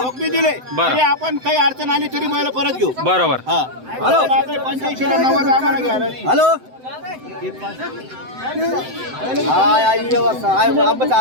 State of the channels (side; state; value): left; late; 7.8 ms